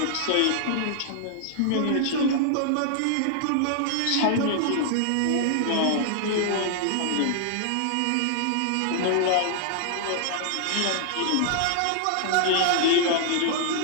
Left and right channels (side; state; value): both; different; correlation -0.01